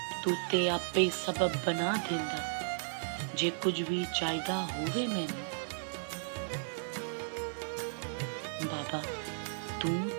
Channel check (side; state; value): left; silent; digital silence